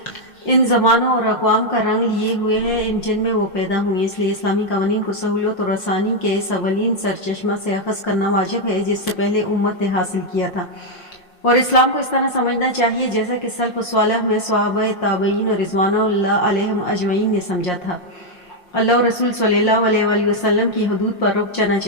ان زمانوں اور اقوام کا رنگ لیے ہوئے ہیں جن میں وہ پیدا ہوئی، اس لیے اسلامی قوانین کو سہولت اور آسانی کے اس اولین سرچشمہ سے اخذ کرنا واجب ہے جس سے پہلے امت نے حاصل کیا تھا، اور اسلام کو اس طرح سمجھنا چاہیے جیسا کہ سلف صالح میں صحابہ تابعین اور رضوان اللہ علیہم اجمعین نے سمجھا تھا۔ اللہ اور رسول صلی اللہ علیہ وآلہ وسلم کی حدود پر رک جانا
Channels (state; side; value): late; right; 5.6 ms